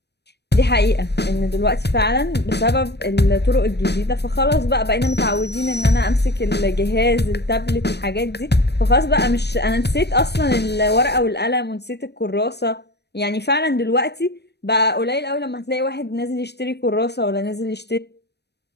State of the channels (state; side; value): late; right; 0.49 ms